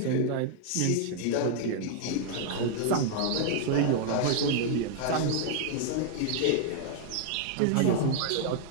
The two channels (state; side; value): different; both; correlation -0.01